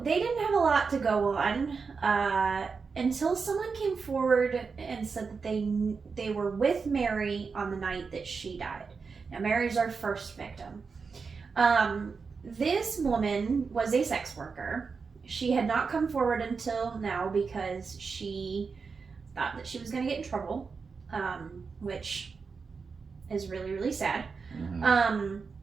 they didn't have a lot to go on until someone came forward and said that they were with Mary on the night that she died. Now Mary's our first victim. This woman was a sex worker. She had not come forward until now because she thought that she was going to get in trouble, which is really, really sad. Mm-hmm.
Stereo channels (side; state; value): left; quieter; 5.1 dB